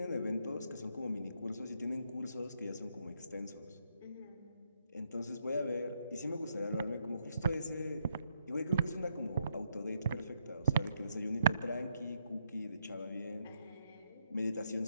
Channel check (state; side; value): inverted; both; correlation -0.78